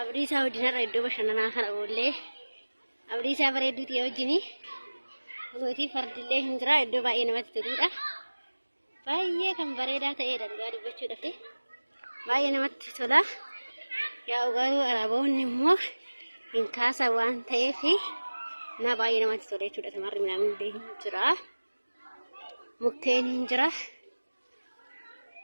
wajjin iddoo bashannanaa kana oollee abdiisaa bareedduu ta'e wajjini Nuti fardillee hin jira iddoo baay'ee namatti toludha. Baay'ee kan bareedaa ta'edha dhugaa dubbachuudhaaf. Baay'ee namatti tola. Yaa garuu araboonni immoo hin kaasan waan ta'eef na baay'ee namatti tola jechuudha. Tamarri midhaan hin jira. Mukkeen hin jira.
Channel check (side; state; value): both; inverted; correlation -1.00